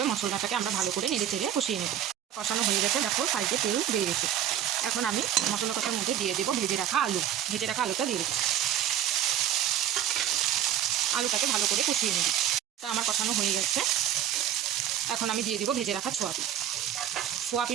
মশলাটাকে আমরা ভালো করে নেড়ে চেড়ে কষিয়ে নেব। কষানো হয়ে গেছে। দেখো সাইডে তেল বেরিয়ে গেছে। এখন আমি মশলা কষার মধ্যে দিয়ে দেবো ভেজে রাখা আলুটা দিয়ে দিচ্ছি। আলুটাকে ভালো করে কষিয়ে নেব। তা আমার কষানো হয়ে গেছে। এখন আমি দিয়ে দিব ভেজে রাখা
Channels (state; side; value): quieter; left; 10.6 dB